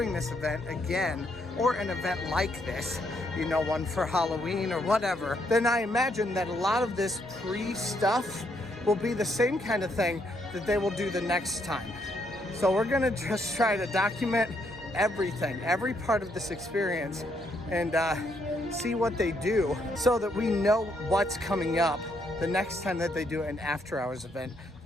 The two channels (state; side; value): normal; both; correlation 0.74